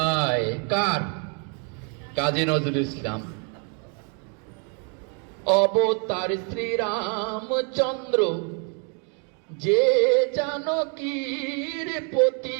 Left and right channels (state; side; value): quieter; left; 38.7 dB